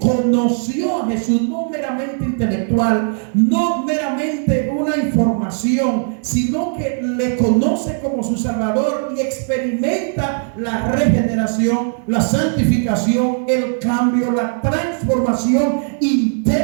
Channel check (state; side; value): silent; left; 62 dB below the other